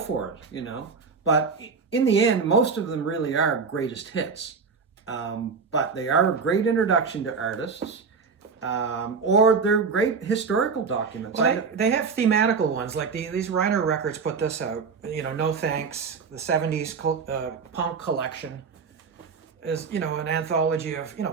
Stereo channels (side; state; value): left; quieter; 5.3 dB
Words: it, you know. But in the end, most of them really are greatest hits. But they are a great introduction to artists. or they're great historical documents. Well, they have thematical ones, like these Reiner Records put this out. You know, No Thanks, the 70s punk collection is, you know, an anthology of, you